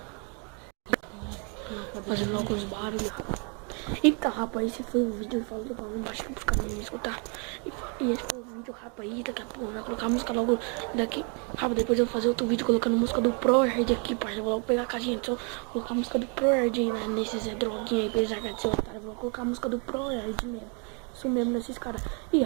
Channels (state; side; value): quieter; left; 36.9 dB